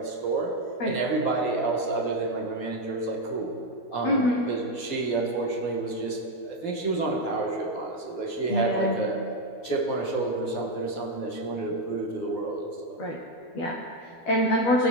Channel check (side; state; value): right; late; 12 ms